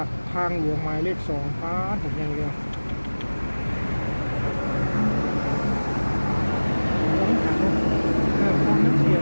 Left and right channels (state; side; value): inverted; both; correlation -1.00